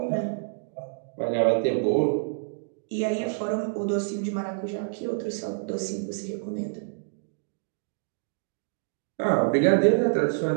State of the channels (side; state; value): left; silent; digital silence